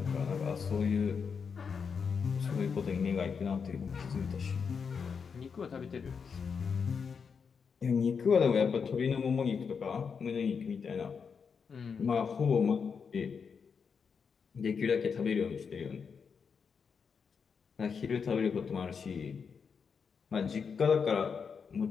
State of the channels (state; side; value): quieter; right; 6.0 dB